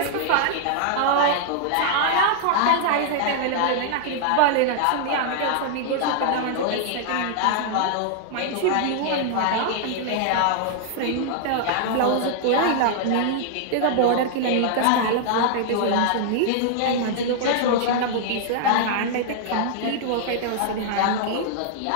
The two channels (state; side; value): different; both; correlation -0.01